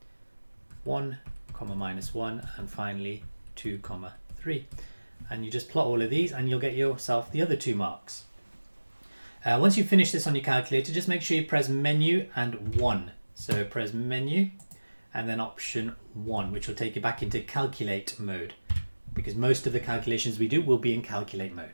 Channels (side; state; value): both; inverted; correlation -1.00